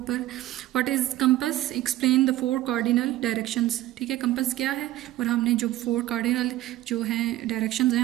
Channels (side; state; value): left; quieter; 15.2 dB